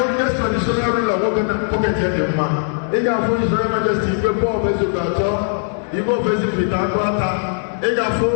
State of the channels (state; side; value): silent; right; digital silence